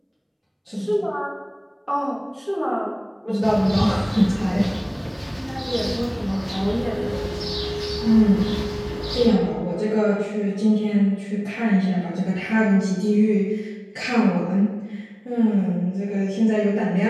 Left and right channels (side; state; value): both; identical; correlation 1.00